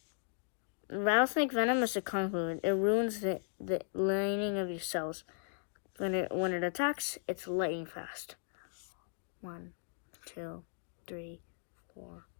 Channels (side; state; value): right; silent; digital silence